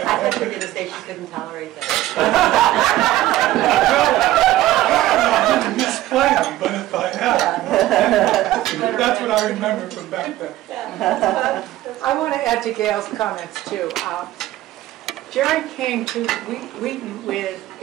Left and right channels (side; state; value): left; quieter; 15.2 dB